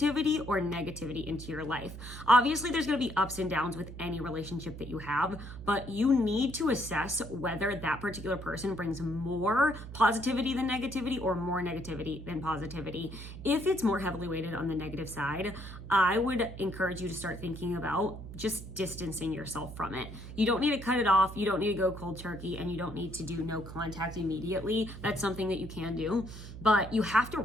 or negativity into your life? Obviously, there's going to be ups and downs with any relationship that you have, but you need to assess whether that particular person brings more positivity than negativity or more negativity than positivity. If it's more heavily weighted on the negative side, I would encourage you to start thinking about just distancing yourself from it. You don't need to cut it off. You don't need to go cold turkey, and you don't need to do no contact immediately. That's something that you can do, but you have to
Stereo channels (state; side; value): noise; right; hum, 12 dB below the sound